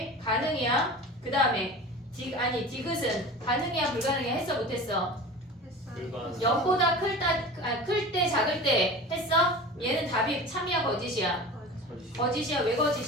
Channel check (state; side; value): normal; both; correlation 0.35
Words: 가능이야. 그 다음에 디귿은 가능이야 불가능이야? 했어 못했어? 불가능. 0보다 클 때 작을 때 했어? 얘는 답이 참이야 거짓이야? 거짓이야. 왜